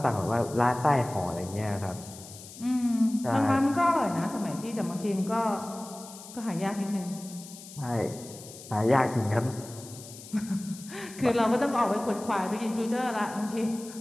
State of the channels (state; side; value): noise; left; hiss, 16 dB below the sound